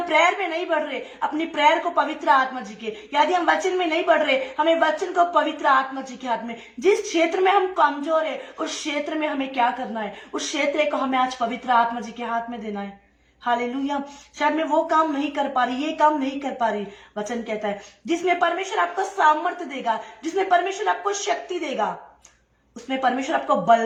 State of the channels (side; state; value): both; identical; correlation 1.00